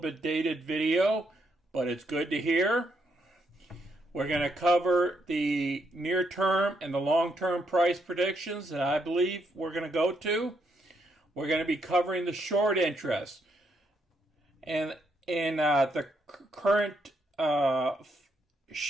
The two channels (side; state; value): both; normal; correlation 0.76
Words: dated video, but it's good to hear. We're going to cover the near-term and the long-term price predictions that I believe we're going to go to. We're going to be covering the short interest and the current